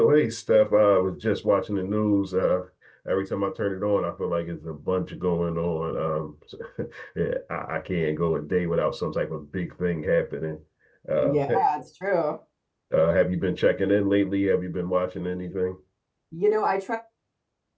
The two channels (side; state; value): both; identical; correlation 1.00